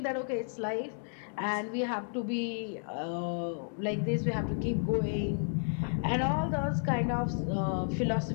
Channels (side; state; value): right; silent; digital silence